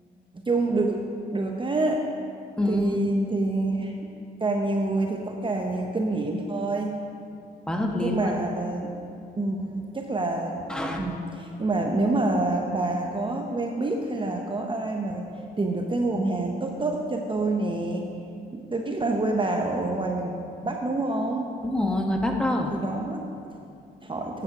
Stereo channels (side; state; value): both; normal; correlation 0.69